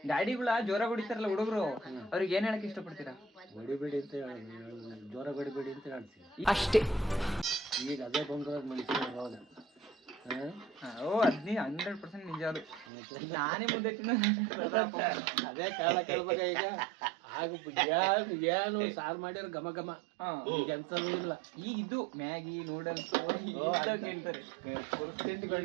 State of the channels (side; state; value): left; drops out; at 12.9 s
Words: ಗಾಡಿಗಳ ಜೋರಾಗಿ ಹೊಡಿತಾರಲ್ಲ ಹುಡುಗರು, ಅವ್ರಿಗೆ ಏನ್ ಹೇಳಕ್ ಇಷ್ಟಪಡ್ತೀರಾ? ಹೊಡಿಬೇಡಿ ಅಂತ ಜೋರ ಹೊಡಿಬೇಡಿ ಅಂತ ಹೇಳ್ತೀವಿ ಅಷ್ಟೇ. ಈಗ ಅದೇ ಬಂದ್ರೆ ಮನುಷ್ಯನ ಅವಾಗ. ಓ ಅದ್ನಿ 100% ನಿಜ. ಅದು ನಾನೇ ಮುದ್ದೆ ತಿನ್ನ ಅದೇ ಕಾರಣ ಕೇಳ್ಬೇಕ. ಈಗ ಆಗ ಏನು ಸಾರು ಮಾಡಿರ ಘಮ ಘಮ. ಈಗ ಎಂತದೂ ಇಲ್ಲ. ಈಗ ಇದು ಮ್ಯಾಗಿ ನೂಡಲ್ಸ್ ಕೇಳ್ತಾರೆ.